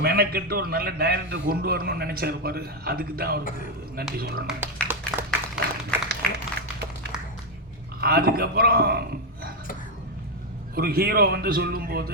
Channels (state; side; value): normal; both; correlation 0.04